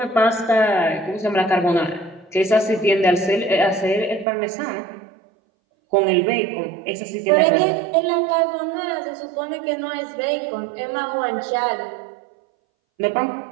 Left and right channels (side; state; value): left; drops out; at 4.2 s